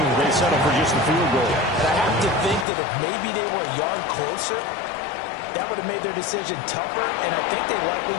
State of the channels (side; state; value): right; drops out; at 2.7 s